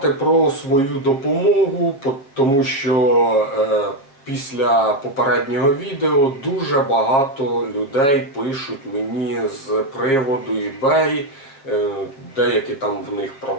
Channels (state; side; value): late; right; 7.2 ms